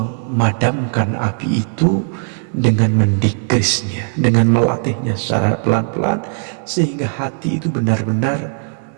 api itu dengan mendikrisnya, dengan melatihnya secara pelan-pelan sehingga hati itu benar-benar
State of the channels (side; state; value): left; silent; 61 dB below the other